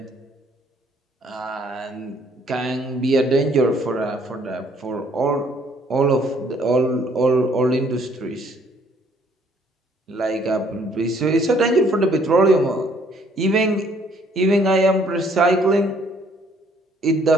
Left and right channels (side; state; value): both; normal; correlation 0.63